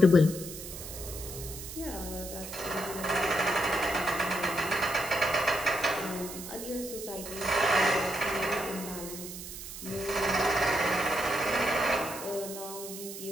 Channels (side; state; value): right; noise; hiss, 10 dB below the sound